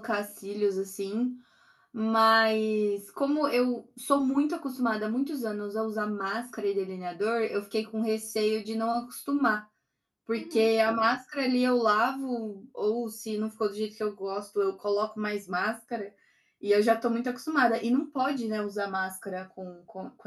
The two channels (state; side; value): identical; both; correlation 1.00